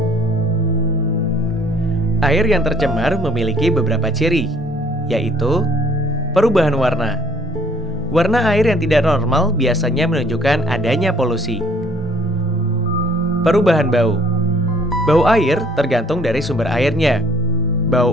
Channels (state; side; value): normal; both; correlation 0.59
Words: Air yang tercemar memiliki beberapa ciri, yaitu perubahan warna. Warna air yang tidak normal biasanya menunjukkan adanya polusi. Perubahan bau. Bau air tergantung dari sumber airnya. Bau